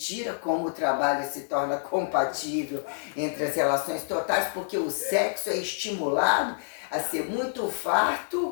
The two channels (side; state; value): right; silent; 56 dB below the other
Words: como o trabalho se torna compatível entre as relações totais, porque o sexo é estimulado a ser muito